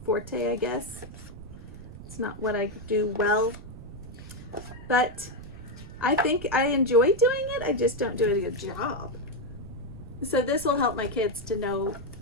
forte, I guess. It's not what I do well, but I think I enjoy doing it. I just don't do a good job. So this will help my kids to know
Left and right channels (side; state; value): right; noise; rumble, 14 dB below the sound